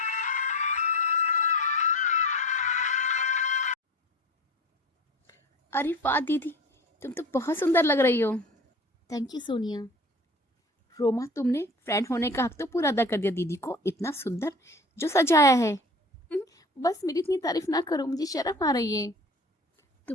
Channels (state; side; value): normal; both; correlation 0.38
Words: अरे वाह दीदी, तुम तो बहुत सुंदर लग रही हो। Thank you Sonia. रोमा, तुमने फ्रेंड होने का हक तो पूरा अदा कर दिया दीदी को, इतना सुंदर जो सजाया है। बस मेरी इतनी तारीफ ना करो, मुझे शर्म आ रही है।